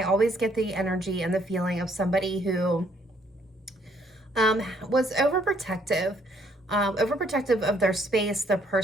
always get the energy and the feeling of somebody who was overprotective of their space, their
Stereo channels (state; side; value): normal; both; correlation 0.67